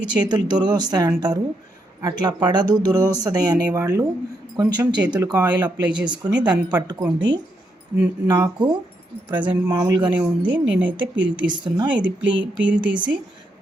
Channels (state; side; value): normal; both; correlation 0.79